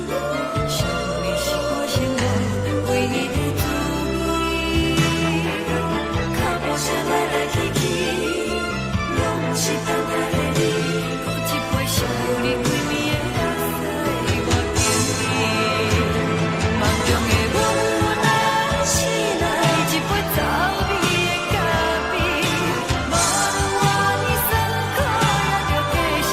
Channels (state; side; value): identical; both; correlation 1.00